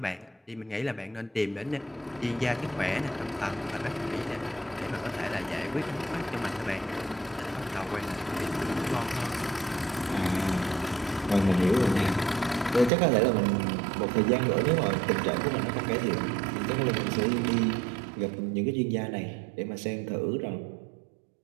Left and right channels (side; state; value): left; drops out; at 12.9 s